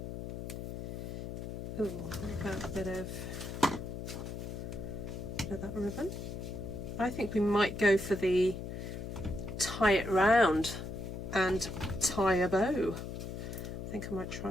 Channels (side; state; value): left; noise; hum, 6 dB below the sound